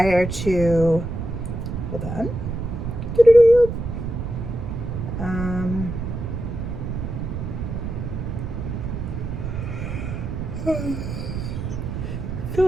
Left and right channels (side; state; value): right; noise; rumble, 5 dB below the sound